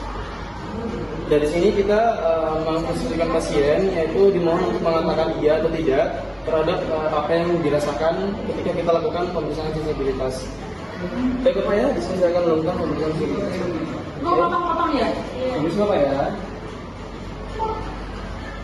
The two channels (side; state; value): both; identical; correlation 1.00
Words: Dari sini kita memposisikan pasien, yaitu dimohon untuk mengatakan iya atau tidak terhadap apa yang dirasakan ketika kita lakukan pemeriksaan sensibilitas. Baik Bapak ya, di sini saya akan melakukan pemeriksaan sensibilitas. Mau potong-potong ya? Bisa Bapak ya?